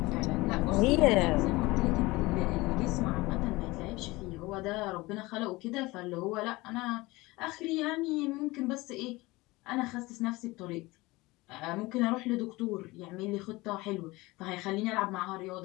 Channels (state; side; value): quieter; right; 21.4 dB